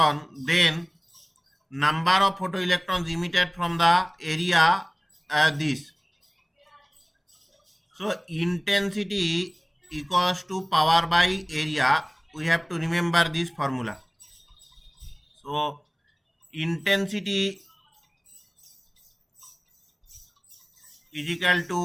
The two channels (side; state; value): both; identical; correlation 1.00